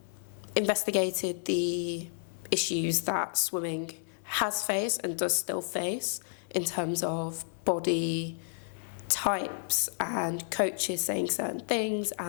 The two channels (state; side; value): silent; right; digital silence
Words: investigated the issues that swimming has faced and does still face in terms of body types and coaches saying certain things